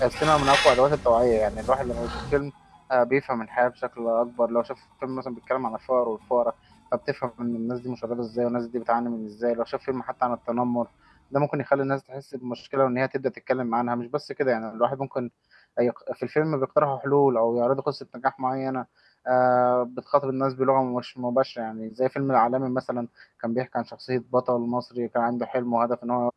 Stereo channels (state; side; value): identical; both; correlation 1.00